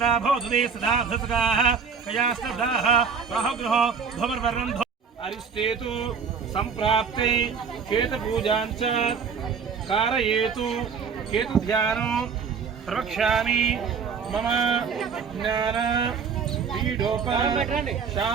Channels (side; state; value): left; quieter; 6.0 dB